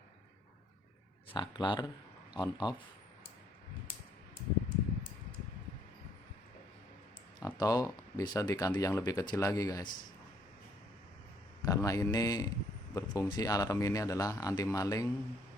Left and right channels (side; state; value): both; normal; correlation 0.66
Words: saklar on off, atau bisa diganti yang lebih kecil lagi guys, karena ini berfungsi, alarm ini adalah anti maling,